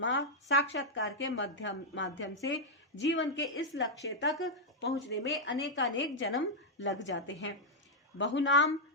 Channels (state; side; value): normal; both; correlation -0.03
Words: साक्षात्कार के माध्यम से जीवन के इस लक्ष्य तक पहुंचने में अनेकानेक जन्म लग जाते हैं। बहुनाम